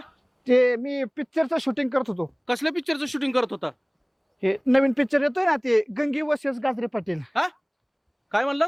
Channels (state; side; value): identical; both; correlation 1.00